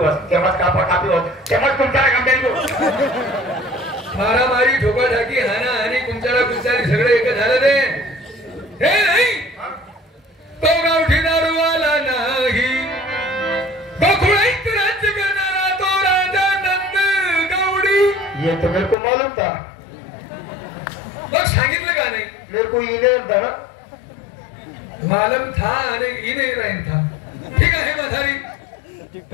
तेव्हाच कापी वस, तेव्हाच तुमच्या मारामारी, ठोकाठाकी, हाना आणि कुंचाला कुंचारी सगळे एक झालं. ते हे नाही, तो गावठी दारूवाला नाही, गोकुळाईत राज्य करणारा तो राजा नंद गौडी. ये तो मेरे को मालूम था. मग सांगितलं का नाही? मेरे को ये नहीं था ना. मालम था आणि ई नाही राहील था. ठीक आहे म्हातारी,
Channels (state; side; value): drops out; right; at 18.9 s